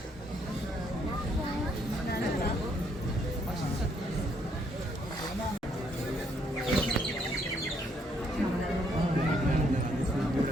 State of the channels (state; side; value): normal; both; correlation 0.70